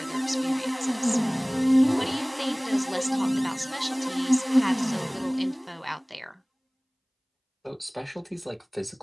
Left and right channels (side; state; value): both; identical; correlation 1.00